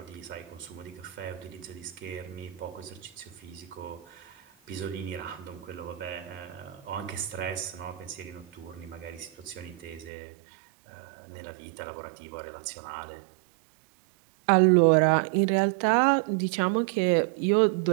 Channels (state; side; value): drops out; left; at 10.1 s